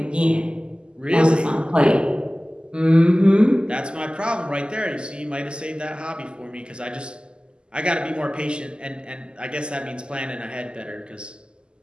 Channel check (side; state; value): left; late; 0.049 ms